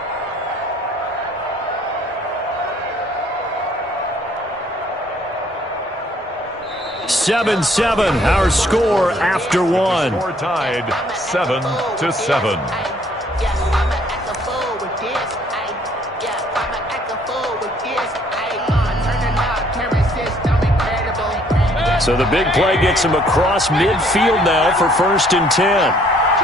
Seven, our score after one. Score tied 7-7. So the big play gets him across midfield now for 1st and 10.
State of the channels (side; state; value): both; normal; correlation 0.62